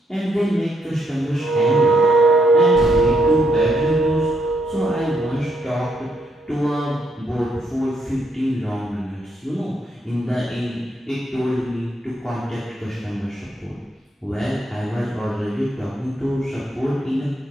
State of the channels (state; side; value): normal; both; correlation 0.76